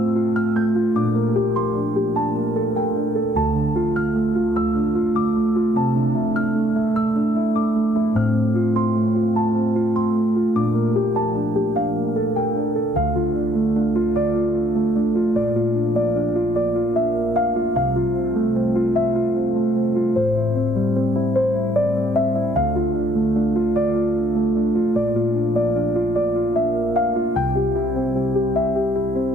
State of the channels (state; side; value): normal; both; correlation 0.66